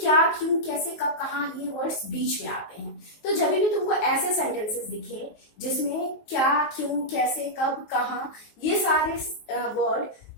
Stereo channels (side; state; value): right; late; 19 ms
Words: क्यों, कैसे, कब, कहाँ, ये वर्ड्स बीच में आते हैं। तो जब भी तुमको ऐसे सेंटेंसेस दिखे जिसमें क्या, क्यों, कैसे, कब, कहाँ, ये सारे वर्ड